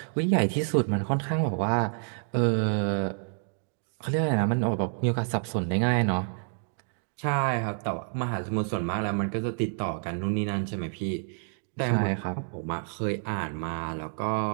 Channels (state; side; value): silent; left; 59 dB below the other